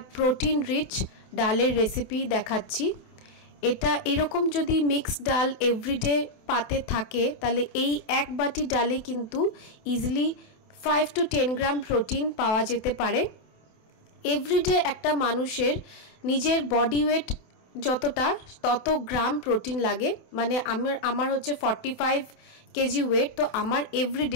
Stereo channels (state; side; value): late; right; 27 ms